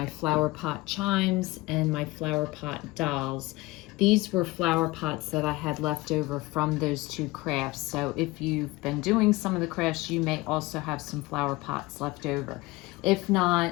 flower pot chimes and my flower pot dolls. These were flower pots that I had left over from those two crafts. So if you've been doing some of the crafts, you may also have some flower pots left over. If not,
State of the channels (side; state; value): right; quieter; 21.0 dB